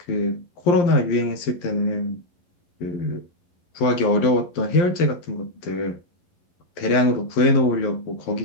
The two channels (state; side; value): late; right; 11 ms